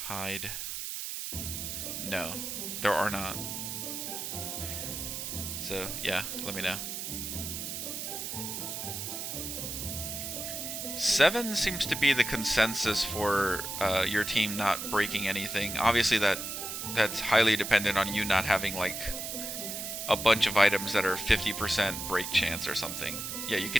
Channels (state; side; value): noise; right; hiss, 5 dB below the sound